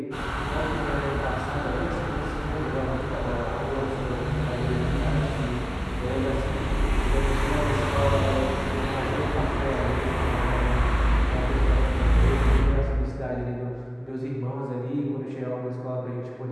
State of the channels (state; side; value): identical; both; correlation 1.00